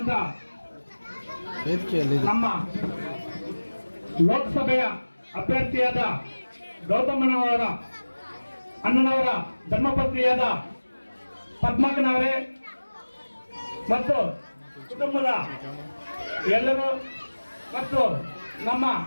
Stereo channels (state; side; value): inverted; both; correlation -1.00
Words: ನಮ್ಮ ಲೋಕಸಭೆಯ ಅಭ್ಯರ್ಥಿಯಾದ ಗೌತಮನವರ ಅಣ್ಣನವರ ಧರ್ಮಪತ್ನಿಯಾದ ಪದ್ಮಕ್ಕನವರೇ ಮತ್ತು ಕುಟುಂಬದ ಎಲ್ಲರೂ ಮತ್ತು ನಮ್ಮ